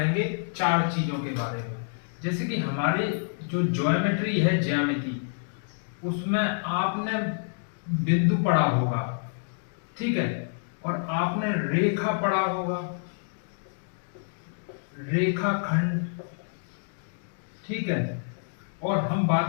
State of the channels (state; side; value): silent; right; digital silence